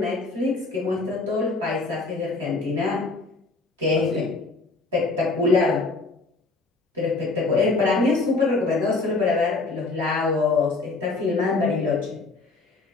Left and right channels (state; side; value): quieter; right; 3.6 dB